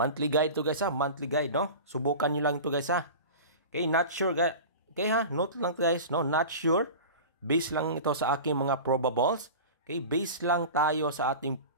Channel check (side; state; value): both; inverted; correlation -0.33